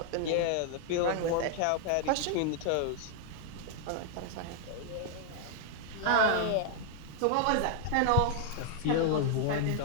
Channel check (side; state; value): both; different; correlation 0.00